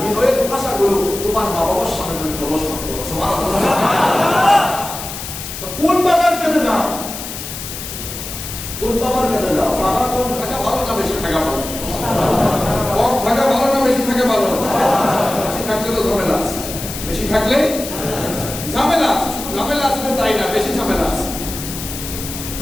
ভাষাগুলো তোমার মা বাবার সামনে তুমি প্রদর্শন করো। সুবহানাল্লাহ। কোন বাবার কাছে যাও? কোন বাবার কাছে যাও? বাবা কম থাকা ভালো না বেশি থাকা ভালো? কম থাকা ভালো না বেশি থাকা ভালো? বেশি থাকলে তো ঝামেলা আছে। বেশি থাকলে ঝামেলা আছে। শুধু ঝামেলা আছে তাই না, বেশি ঝামেলা আছে।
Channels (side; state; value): left; noise; hiss, 9 dB below the sound